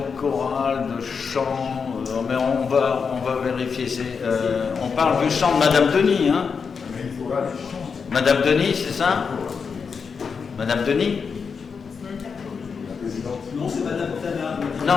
chorale, de chant, mais on va vérifier. On parle du chant de Madame Denis, hein? Madame Denis, c'est ça? Madame Denis? Non, c'est Madame Tana.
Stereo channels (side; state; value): right; quieter; 5.7 dB